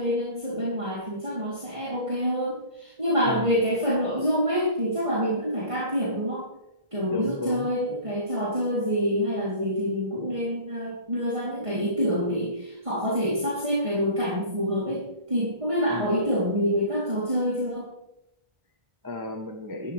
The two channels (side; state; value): left; late; 1.5 ms